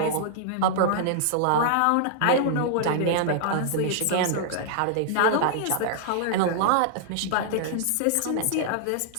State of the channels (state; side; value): different; both; correlation -0.01